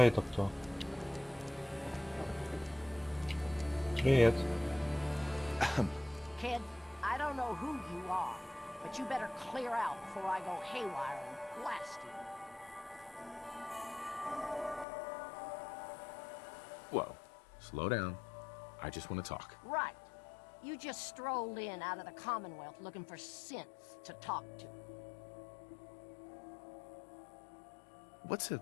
это кто? Привет. Kid, I don't know who you are, but you better clear out before I go haywire and blast you. Whoa. Slow down. I just want to talk. Right. You just strolled in out of the Commonwealth looking for synths to talk to. What's a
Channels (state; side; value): drops out; right; at 14.9 s